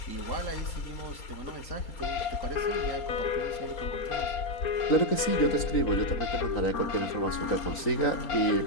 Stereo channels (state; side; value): late; right; 3.9 ms